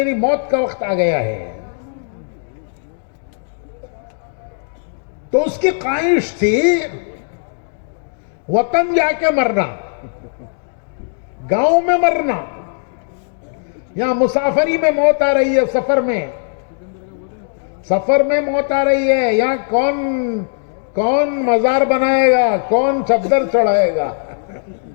موت کا وقت آ گیا ہے. تو اس کی خواہش تھی وطن جا کے مرنا, گاؤں میں مرنا. یہاں مسافری میں موت آ رہی ہے, سفر میں موت آ رہی ہے. یہاں کون مزار بنائے گا, کون چادر چڑھائے گا,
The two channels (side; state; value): right; silent; digital silence